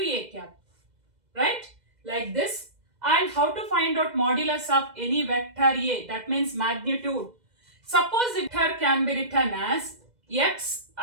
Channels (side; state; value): left; late; 2.0 ms